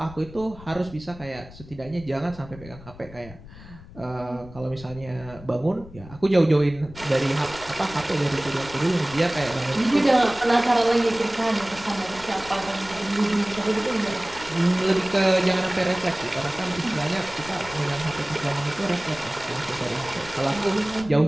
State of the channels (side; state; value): left; noise; rumble, 18 dB below the sound